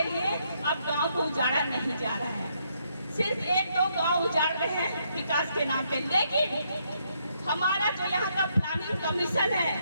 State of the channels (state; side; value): inverted; both; correlation -0.75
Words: लिए अब गांव को उजाड़ा नहीं जा रहा है, सिर्फ 1-2 गांव उजाड़ रहे हैं विकास के नाम पे। लेकिन हमारा जो यहाँ का प्लानिंग कमीशन